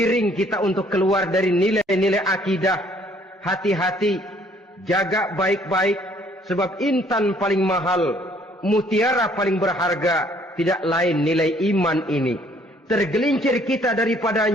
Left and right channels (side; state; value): both; normal; correlation 0.61